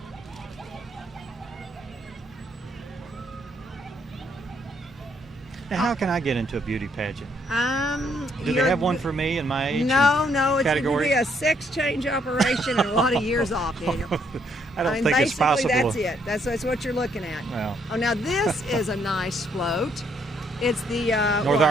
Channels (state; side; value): normal; both; correlation 0.71